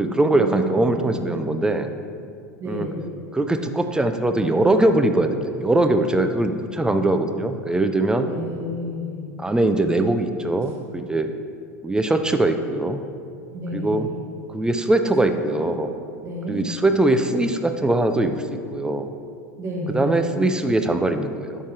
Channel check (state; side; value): normal; both; correlation 0.68